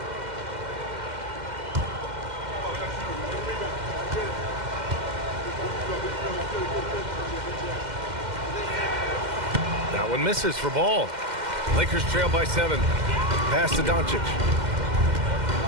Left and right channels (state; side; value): late; left; 2.1 ms